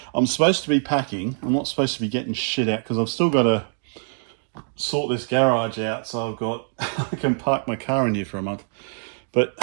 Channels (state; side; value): silent; left; digital silence